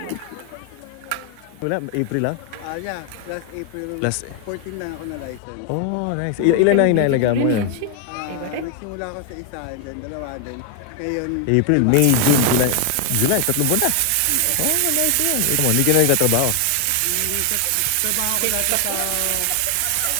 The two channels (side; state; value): both; different; correlation 0.00